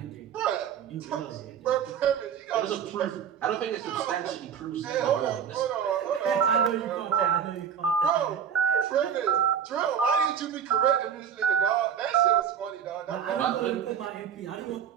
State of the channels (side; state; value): left; quieter; 8.0 dB